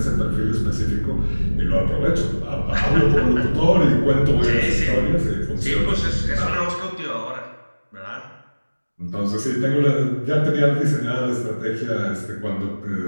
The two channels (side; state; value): both; inverted; correlation -1.00